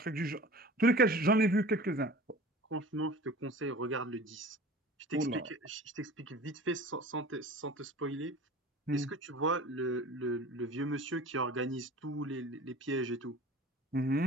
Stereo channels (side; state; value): both; normal; correlation 0.41